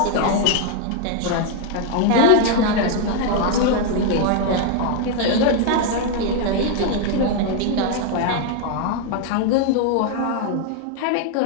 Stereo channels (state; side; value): different; both; correlation 0.00